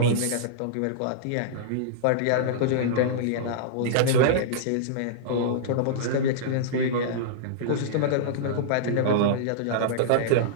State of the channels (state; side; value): different; both; correlation -0.02